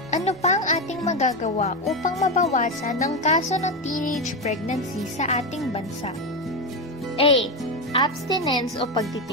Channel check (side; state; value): both; normal; correlation 0.12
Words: Ano pa ang ating magagawa upang mabawasan ang kaso ng teenage pregnancy sa ating bansa? A. abstinence o